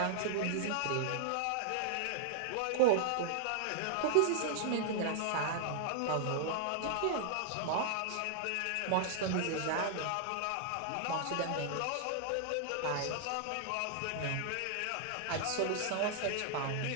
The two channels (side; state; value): both; different; correlation -0.01